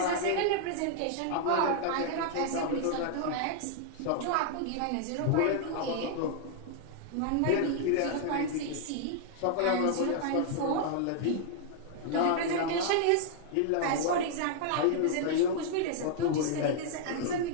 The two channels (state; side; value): different; both; correlation -0.01